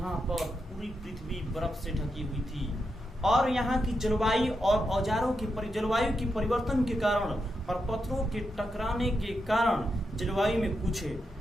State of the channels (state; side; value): normal; both; correlation 0.85